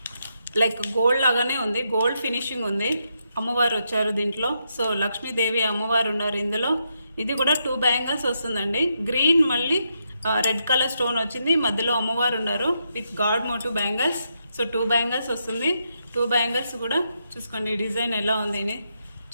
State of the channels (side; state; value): both; inverted; correlation -0.81